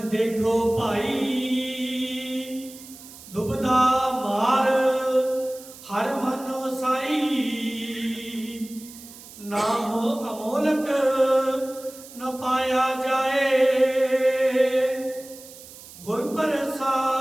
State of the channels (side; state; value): right; noise; hiss, 18 dB below the sound